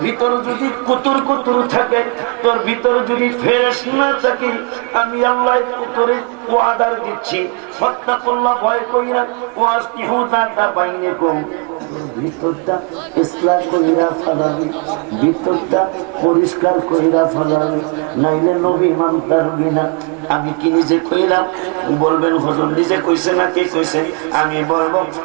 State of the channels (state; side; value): quieter; left; 32.6 dB